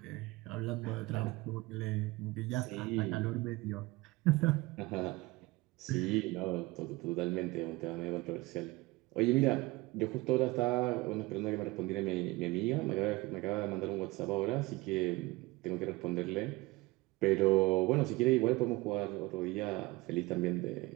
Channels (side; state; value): left; quieter; 21.7 dB